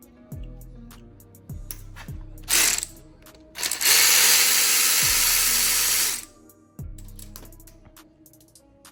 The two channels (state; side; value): identical; both; correlation 1.00